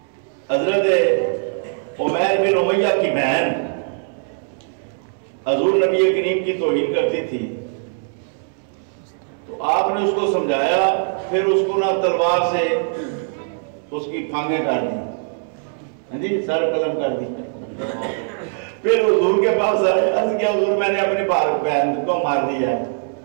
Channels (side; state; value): left; silent; 65 dB below the other